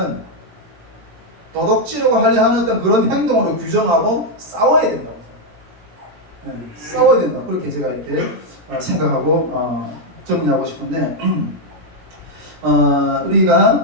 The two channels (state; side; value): late; left; 17 ms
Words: 어떤 그런 행동으로 규정하고 싸워야 된다고. 싸워야 된다. 그렇게 제가 이렇게 생각하고 정리하고 싶은데